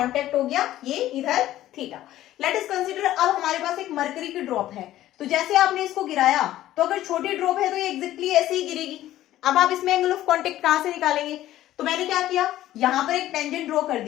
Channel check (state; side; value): quieter; right; 13.9 dB